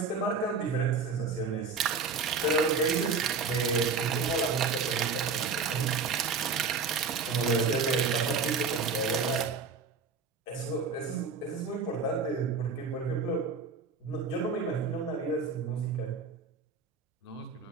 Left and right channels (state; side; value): quieter; left; 4.8 dB